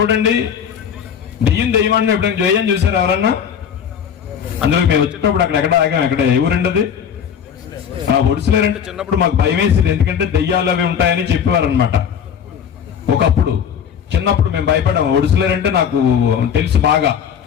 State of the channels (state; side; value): quieter; right; 8.0 dB